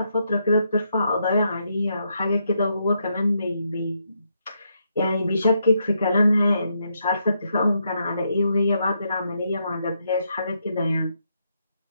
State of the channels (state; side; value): inverted; both; correlation -0.79